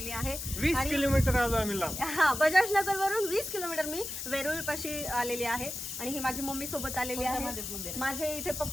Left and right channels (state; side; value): noise; left; hiss, 6 dB below the sound